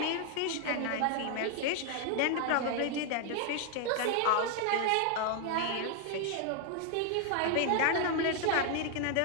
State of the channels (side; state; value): both; different; correlation 0.00